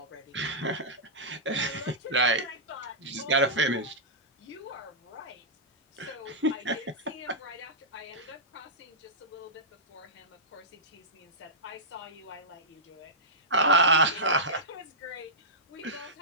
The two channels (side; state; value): both; normal; correlation -0.13